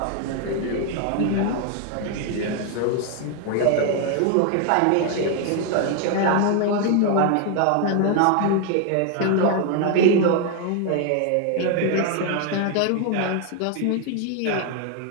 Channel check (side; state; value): both; different; correlation 0.01